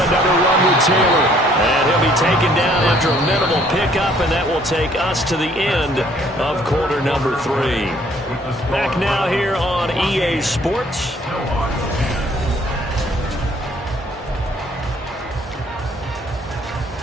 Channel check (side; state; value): both; normal; correlation 0.61